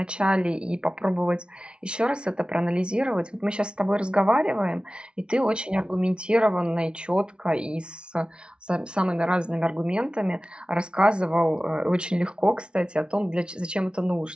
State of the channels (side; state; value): left; late; 0.057 ms